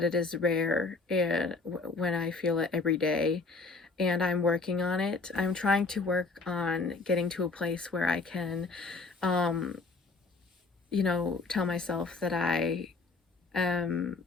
it is rare and when I feel it every day, and I'm working on it. I'm trying to work on getting to a place where I can, um, tell myself that I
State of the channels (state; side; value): quieter; right; 3.9 dB